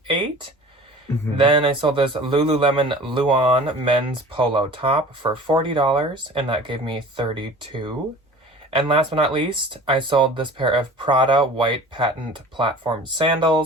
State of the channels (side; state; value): both; normal; correlation 0.42